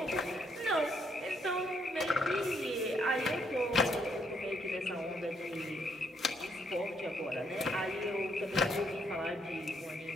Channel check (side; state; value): both; normal; correlation 0.72